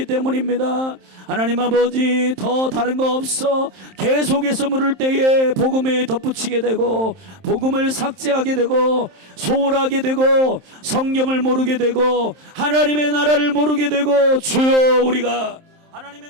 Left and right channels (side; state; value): left; late; 27 ms